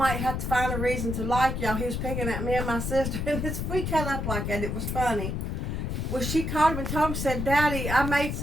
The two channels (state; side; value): noise; left; rumble, 2 dB below the sound